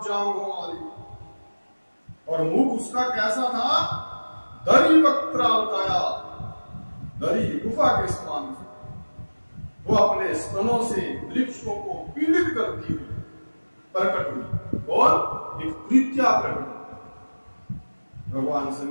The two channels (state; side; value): inverted; both; correlation -1.00